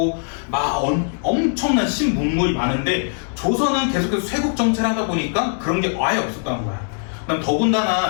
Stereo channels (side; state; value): right; silent; 64 dB below the other